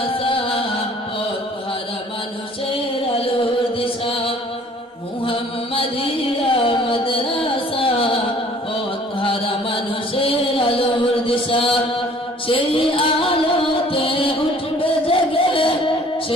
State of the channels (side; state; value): both; normal; correlation 0.54